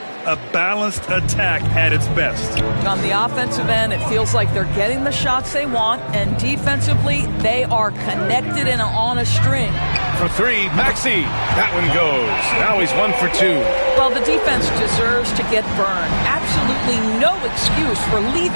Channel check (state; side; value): inverted; both; correlation -1.00